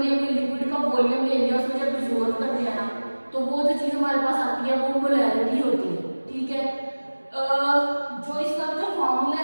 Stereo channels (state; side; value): inverted; both; correlation -1.00